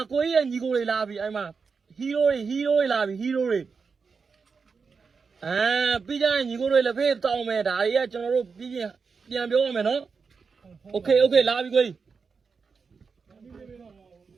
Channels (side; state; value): left; quieter; 5.2 dB